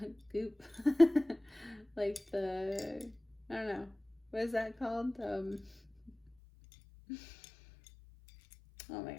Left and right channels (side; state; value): right; drops out; at 6.3 s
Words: Goop. Like the, I don't know. What is that called? Oh my